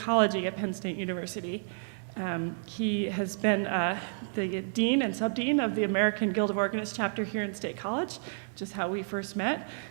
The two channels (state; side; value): silent; left; digital silence